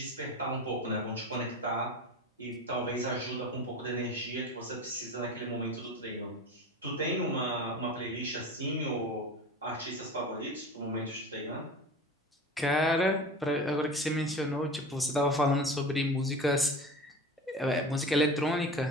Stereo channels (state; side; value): normal; both; correlation 0.33